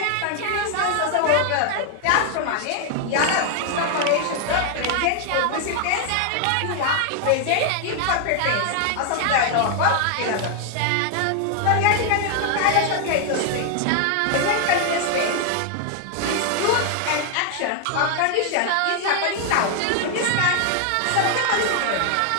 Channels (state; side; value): different; both; correlation 0.00